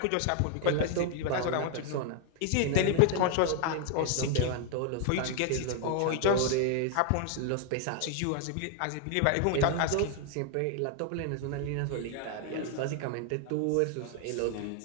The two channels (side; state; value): both; different; correlation 0.00